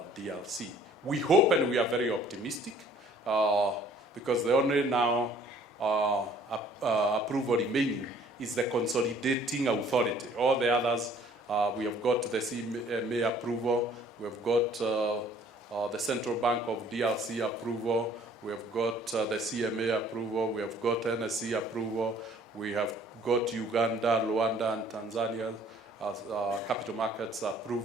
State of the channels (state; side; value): normal; both; correlation 0.56